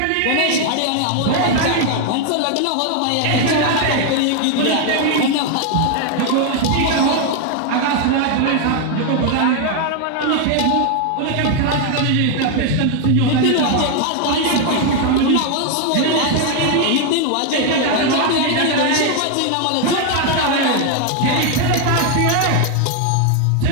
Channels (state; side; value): different; both; correlation 0.01